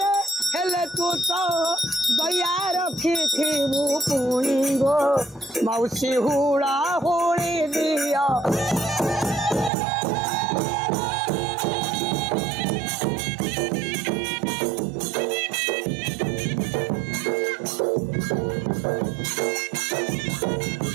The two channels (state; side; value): drops out; left; at 9.7 s